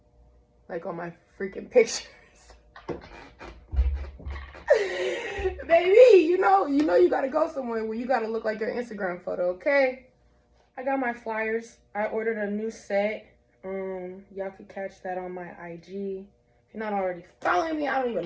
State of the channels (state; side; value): identical; both; correlation 1.00